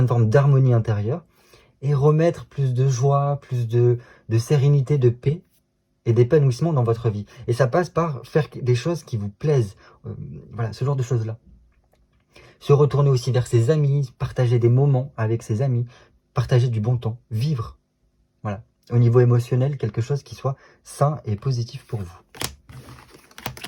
forme d'harmonie intérieure, et remettre plus de joie, plus de sérénité, de paix, et d'épanouissement dans votre vie. Et ça passe par faire des choses qui vous plaisent, voilà, ce genre de choses-là. Se retourner aussi vers ses amis, partager des moments avec ses amis, partager du bon temps, vivre, voilà, au niveau émotionnel, quelque chose qui soit sain et positif pour vous.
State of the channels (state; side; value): identical; both; correlation 1.00